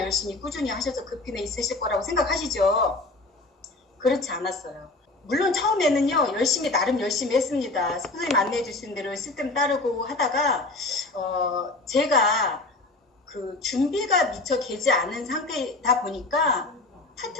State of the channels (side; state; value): right; quieter; 3.1 dB